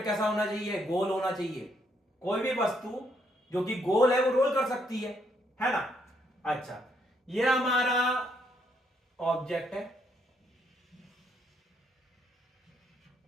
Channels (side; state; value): both; normal; correlation 0.73